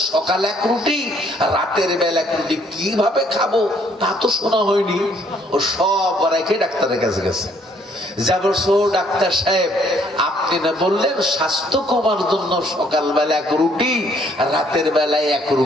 সকাল 1 রুটি, রাতের বেলা 1 রুটি, কিভাবে খাবো তা তো শোনা হয়নি। ও সব রেখে ডাক্তারের কাছে গেছে। যা বলছো, ডাক্তার সাহেব, আপনি না বললেন স্বাস্থ্য কমার জন্য সকালবেলা 1 রুটি, রাতের বেলায় 1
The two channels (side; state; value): both; normal; correlation 0.65